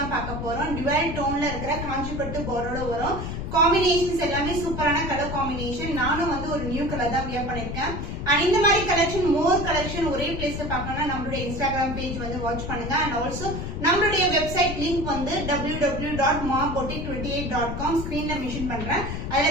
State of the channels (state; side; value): noise; left; rumble, 5 dB below the sound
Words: பார்க்க போறோம். டுவல் டோன்ல இருக்கிற காஞ்சிபட்டு பார்டரோட வரும். காம்பினேஷன்ஸ் எல்லாமே சூப்பரான கலர் காம்பினேஷன். நானும் ஒரு நியூ கலர் தான் வியர் பண்ணிருக்கேன். அண்ட் இந்த மாதிரி கலெக்ஷன் மோர் கலெக்ஷன் ஒரே பிளேஸ்ல பார்க்கணும்னா நம்மளுடைய இன்ஸ்டாகிராம் பேஜ் வாட்ச் பண்ணுங்க. அண்ட் ஆல்சோ நம்மளுடைய வெப்சைட் லிங்க் www.maboutique28.com ஸ்கிரீன்ல மென்ஷன் பண்றேன்.